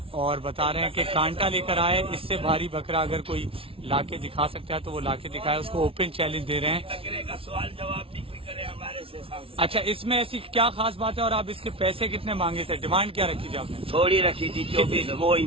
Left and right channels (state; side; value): late; left; 0.26 ms